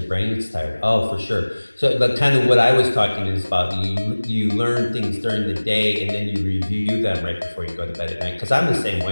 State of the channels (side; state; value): both; inverted; correlation -1.00